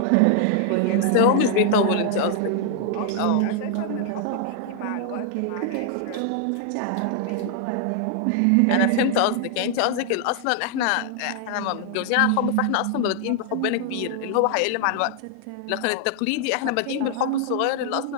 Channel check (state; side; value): different; both; correlation 0.00